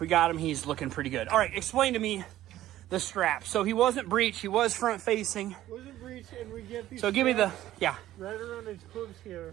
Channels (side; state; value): left; quieter; 13.9 dB